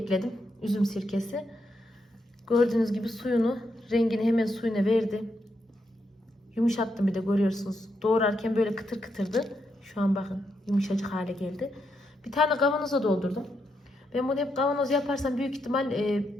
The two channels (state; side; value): normal; both; correlation 0.81